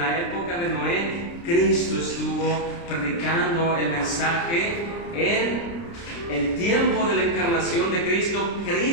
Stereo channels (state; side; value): late; right; 29 ms